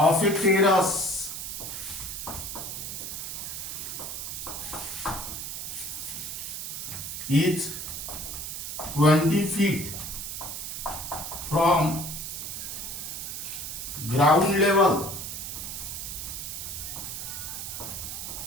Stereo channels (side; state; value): right; noise; hiss, 6 dB below the sound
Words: a terrace is 20 feet from ground level